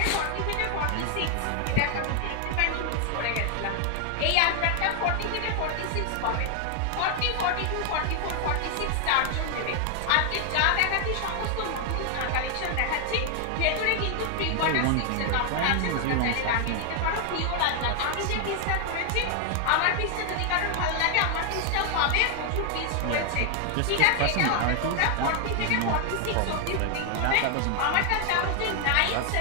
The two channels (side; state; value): both; different; correlation 0.00